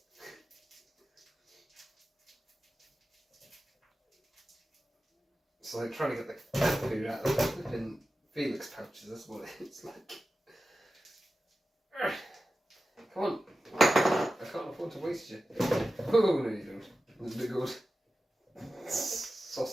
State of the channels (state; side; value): normal; both; correlation 0.93